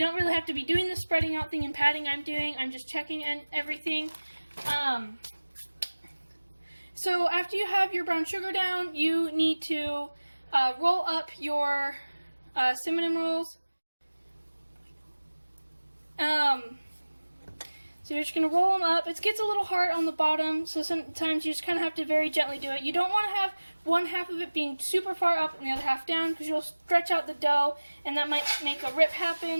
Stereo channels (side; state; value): both; inverted; correlation -1.00